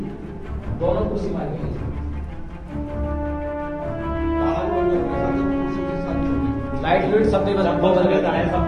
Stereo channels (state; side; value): identical; both; correlation 1.00